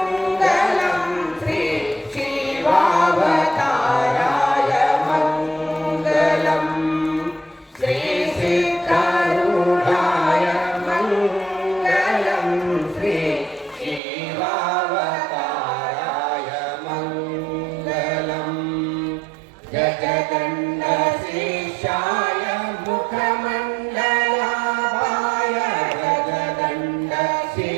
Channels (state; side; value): drops out; left; at 14.0 s